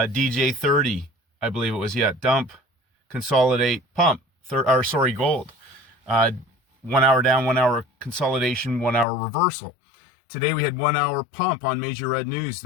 I believe it was, dump, consolidate, pump, gold. 1 hour down, 1 hour consolidation, 1 hour reversal. Today we had 1 hour pump on major red news,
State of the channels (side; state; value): right; drops out; at 9.1 s